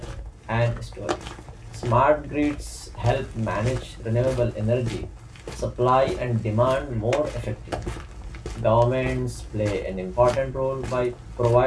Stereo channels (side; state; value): both; identical; correlation 1.00